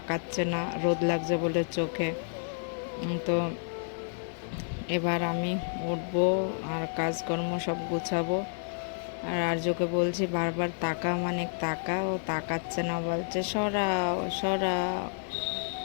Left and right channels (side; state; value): right; silent; digital silence